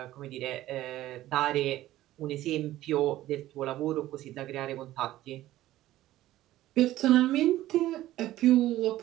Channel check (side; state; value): left; quieter; 14.9 dB